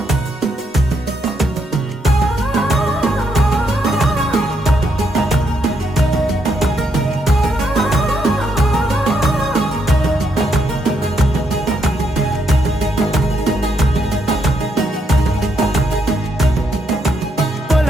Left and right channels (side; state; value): both; normal; correlation 0.77